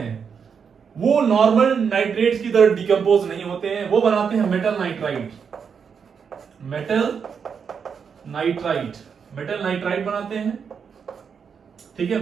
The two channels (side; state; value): left; quieter; 6.5 dB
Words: वो नॉर्मल नाइट्रेट्स की तरह डिकम्पोज नहीं होते हैं, वो बनाते हैं metal nitrite, metal nitrite, metal nitrite बनाते हैं। ठीक है,